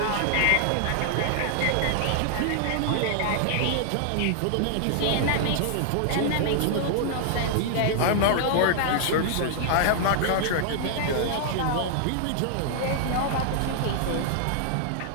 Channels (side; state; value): both; different; correlation -0.01